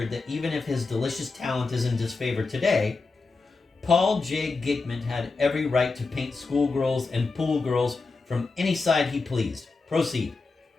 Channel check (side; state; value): right; quieter; 4.0 dB